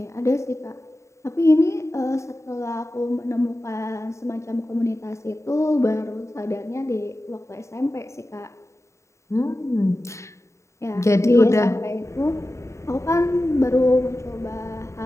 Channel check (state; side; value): late; right; 0.14 ms